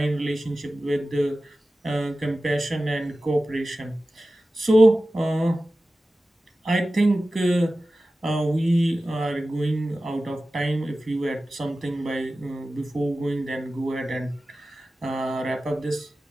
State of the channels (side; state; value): both; normal; correlation 0.95